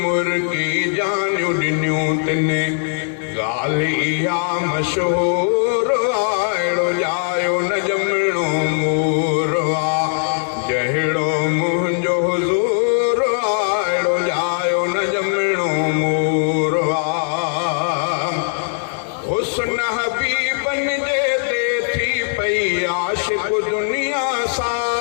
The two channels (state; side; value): silent; right; digital silence